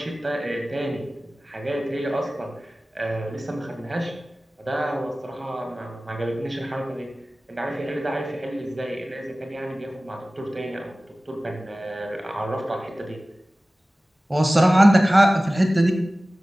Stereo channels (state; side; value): normal; both; correlation 0.97